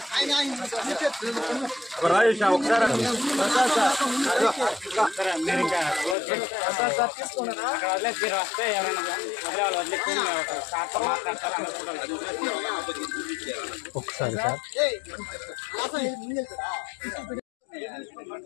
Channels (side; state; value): right; drops out; at 6.2 s